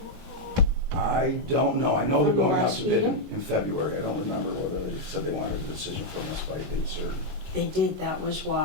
I don't know. I know they're From the going out last to bid meeting? in February. I don't remember whether they said they wanted a decision from us by date certain. They did, that was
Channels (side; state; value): left; late; 28 ms